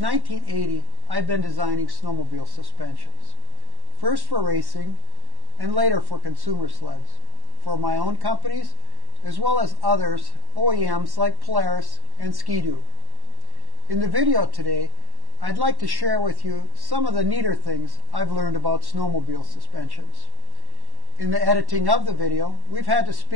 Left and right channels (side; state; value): left; late; 1.1 ms